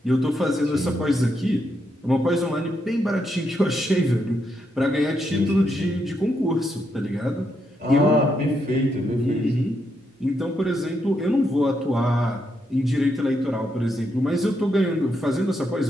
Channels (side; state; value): both; normal; correlation 0.80